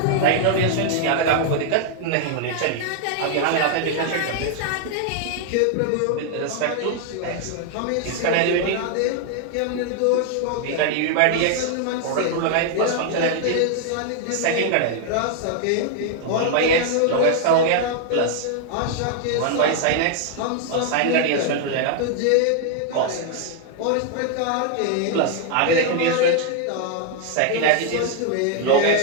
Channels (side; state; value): both; different; correlation 0.00